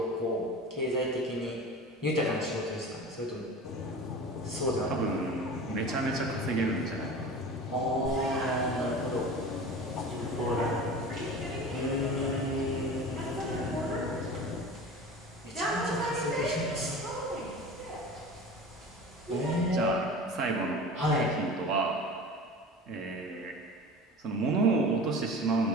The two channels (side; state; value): both; normal; correlation 0.35